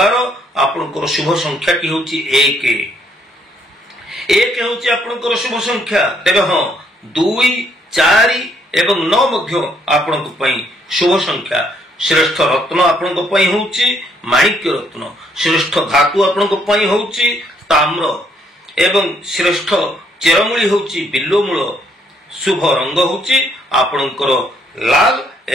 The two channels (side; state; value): both; normal; correlation 0.69